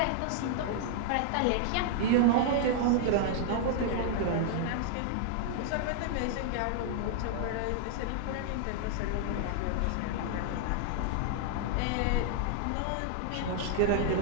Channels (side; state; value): both; different; correlation -0.01